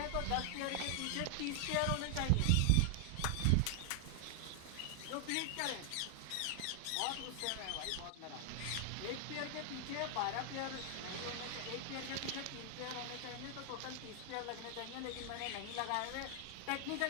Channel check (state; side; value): different; both; correlation 0.00